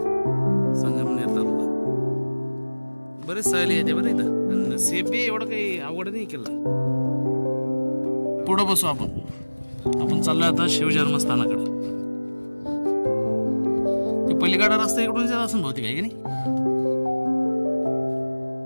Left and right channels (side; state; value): both; inverted; correlation -1.00